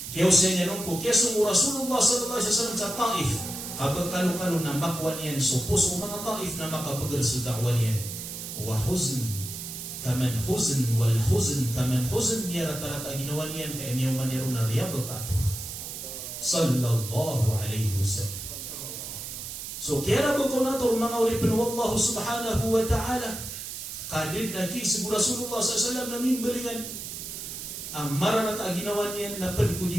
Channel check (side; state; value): right; noise; hiss, 8 dB below the sound